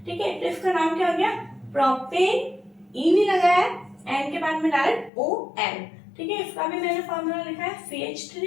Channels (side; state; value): right; drops out; at 5.1 s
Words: ठीक है, तो इसका नाम क्या हो गया? प्रोपेन। ई नहीं लगाया है, एन के बाद में डायरेक्ट ON। ठीक है, इसका भी मैंने फॉर्मूला लिखा है